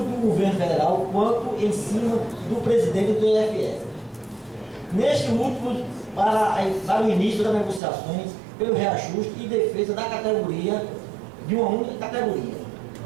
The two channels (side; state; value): left; drops out; at 7.8 s